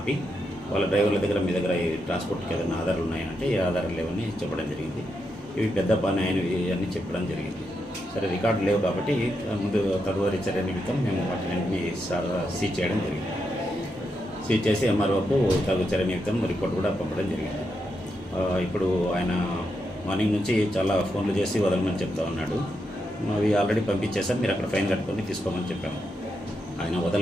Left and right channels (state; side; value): normal; both; correlation 0.83